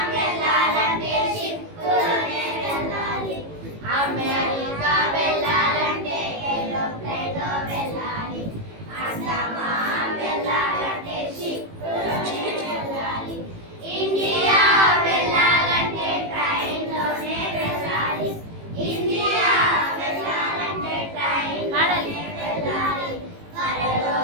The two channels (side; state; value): left; late; 18 ms